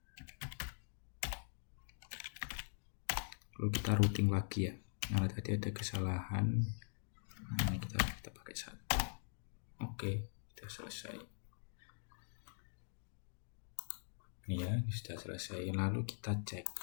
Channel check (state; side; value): silent; right; digital silence